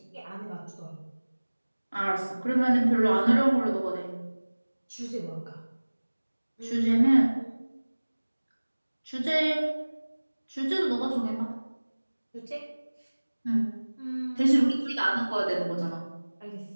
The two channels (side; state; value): both; inverted; correlation -1.00